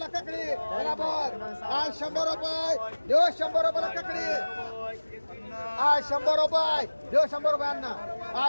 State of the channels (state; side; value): inverted; both; correlation -1.00